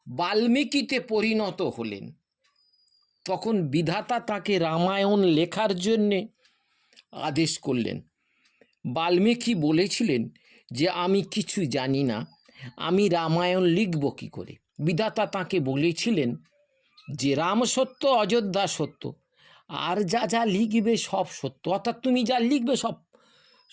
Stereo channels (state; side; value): identical; both; correlation 1.00